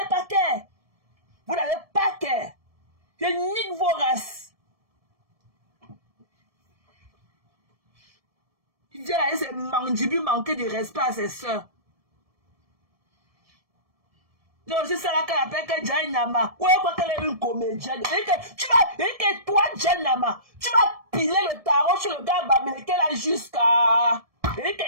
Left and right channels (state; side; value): late; left; 1.7 ms